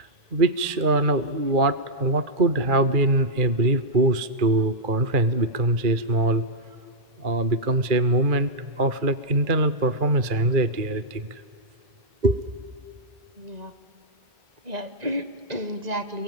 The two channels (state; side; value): late; left; 2.3 ms